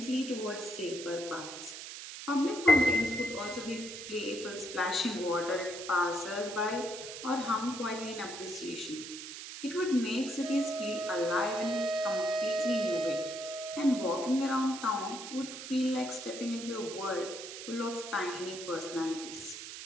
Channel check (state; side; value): noise; right; hiss, 10 dB below the sound